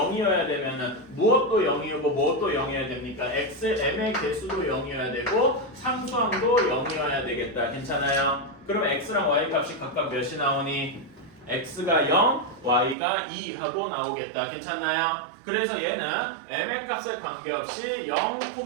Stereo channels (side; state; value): left; drops out; at 13.0 s